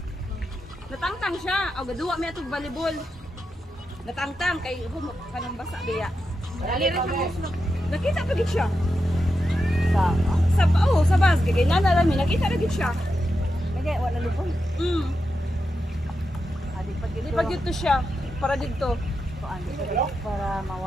Natangtang siya. O gaduwa mi atog volleyball. Natangtang kay kanang basa biya. Dali rin siya. Nakita pa gid siya. Sa bas kay nana rami nakita ra gid siya. Nagay wala lupon. Di pa gid to siya para dito. Para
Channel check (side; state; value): both; normal; correlation 0.88